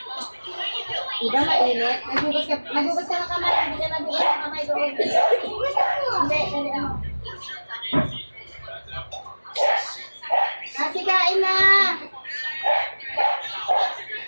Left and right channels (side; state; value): both; inverted; correlation -1.00